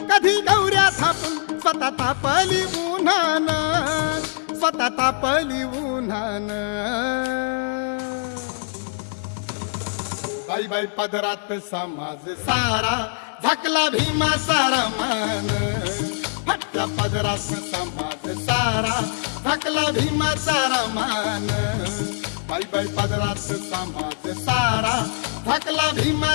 कधी गौऱ्या थापून स्वतः तापली उन्हानं. स्वतः तापली उन्हानं. बाई बाई पदरात समाज सारा झाकला भीमा सारा मान. फटक्या पदरात समाज सारा झाकला भीमा सारा मान. बाई बाई पदरात समाज सारा झाकला भीमा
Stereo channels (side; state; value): right; silent; digital silence